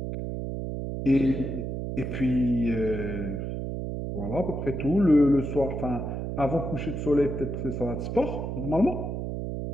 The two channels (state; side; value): noise; right; hum, 4 dB below the sound